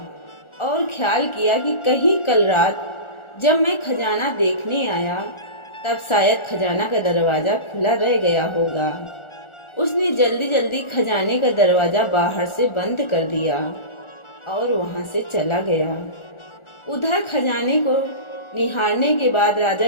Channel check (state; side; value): late; right; 1.4 ms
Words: और ख्याल किया कि कहीं कल रात जब मैं खजाना देखने आया तब शायद खजाना का दरवाजा खुला रह गया होगा। उसने जल्दी जल्दी खजाने का दरवाजा बाहर से बंद कर दिया और वहां से चला गया। उधर खजाने को निहारने के बाद राजा